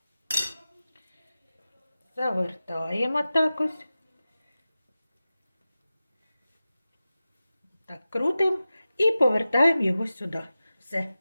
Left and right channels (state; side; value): inverted; both; correlation -0.95